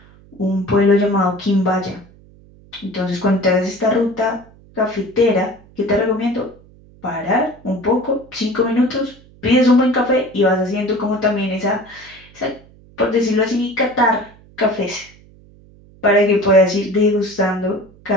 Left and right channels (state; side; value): noise; right; hum, 25 dB below the sound